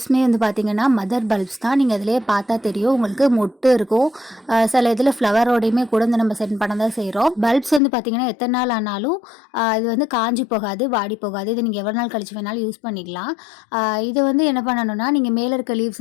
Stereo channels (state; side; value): drops out; right; at 7.8 s